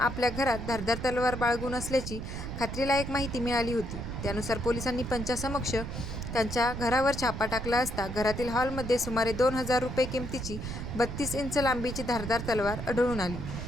घरात धारदार तलवार बाळगून असल्याची खात्रीलायक माहिती मिळाली होती। त्यानुसार पोलिसांनी पंचासमक्ष त्यांच्या घरावर छापा टाकला असता घरातील हॉलमध्ये सुमारे 2000 रुपये किमतीची 32 इंच लांबीची धारदार तलवार आढळून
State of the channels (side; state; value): right; noise; rumble, 6 dB below the sound